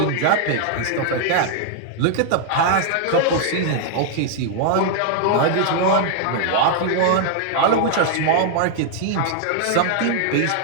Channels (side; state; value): both; different; correlation -0.01